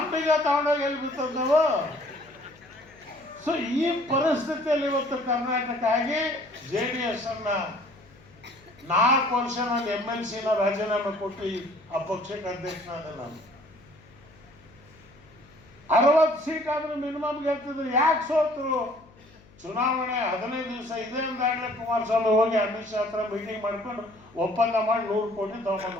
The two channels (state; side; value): noise; left; hum, 26 dB below the sound